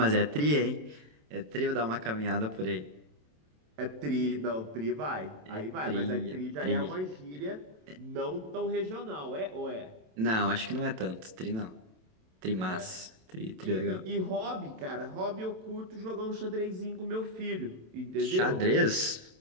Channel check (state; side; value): late; left; 27 ms